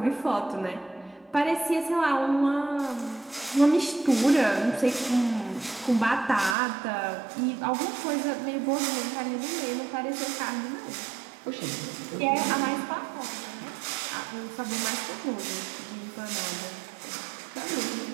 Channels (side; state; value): left; drops out; at 6.6 s